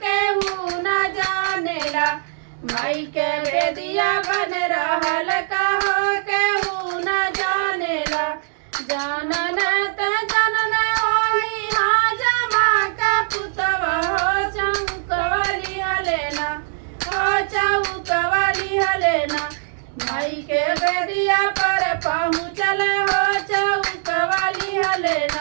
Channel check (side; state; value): left; silent; digital silence